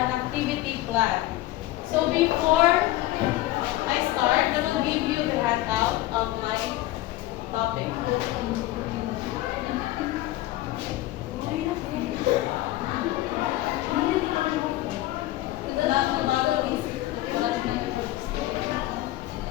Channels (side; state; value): right; quieter; 16.5 dB